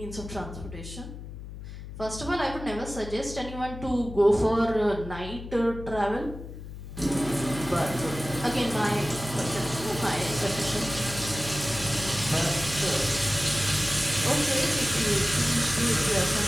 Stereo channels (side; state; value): left; noise; hum, 11 dB below the sound